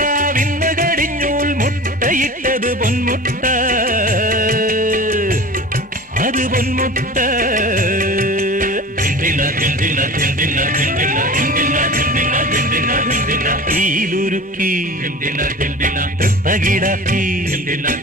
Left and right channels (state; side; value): normal; both; correlation 0.37